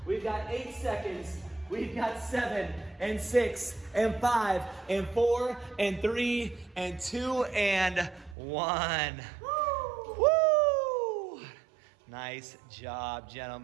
We've got 8 seconds. We've got 7 and 6 and 5 and 4 and 3 and 2 and 1. Woo! Woo! Nice job,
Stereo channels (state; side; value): drops out; left; at 8.3 s